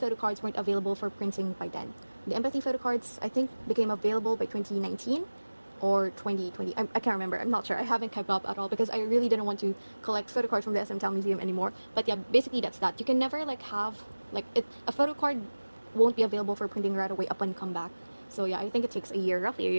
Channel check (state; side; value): inverted; both; correlation -1.00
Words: weren't available for printing by then. The Empathy photocards, I think, became available by 2019 or 2020. I can't remember. I'm not sure. I haven't kept up at all because I really didn't want to collect photocards from the SM Town Museum anymore. But yeah, basically that's that. You can never like have like a photocard won't be available for printing right away upon comeback. So yeah, I think it takes a year, roughly a